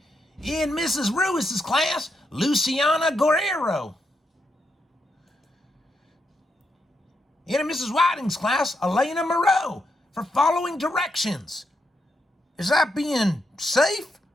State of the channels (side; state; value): both; normal; correlation 0.82